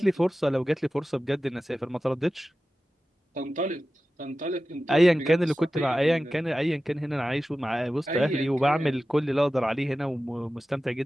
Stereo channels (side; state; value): both; normal; correlation 0.95